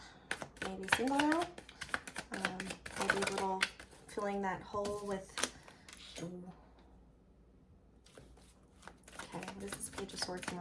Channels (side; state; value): both; identical; correlation 1.00